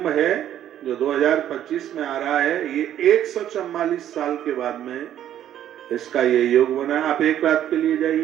है जो 2025 में आ रहा है, ये 144 साल के बाद में इसका ये योग बना। आप एक रात के लिए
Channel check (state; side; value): quieter; left; 11.1 dB